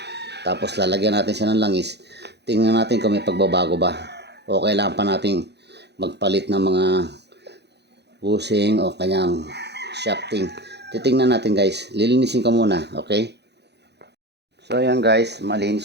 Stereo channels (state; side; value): late; left; 0.49 ms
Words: Tapos lalagyan natin siya ng langis. Tingnan natin kung may pagbabago ba. O kailangan pa natin magpalit ng mga bushing o kanyang shafting. Titingnan natin guys. Lilinisin ko muna. Okay? So, ayan guys.